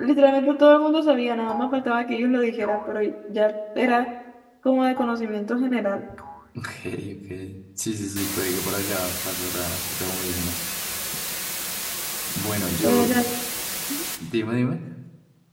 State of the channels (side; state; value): both; identical; correlation 1.00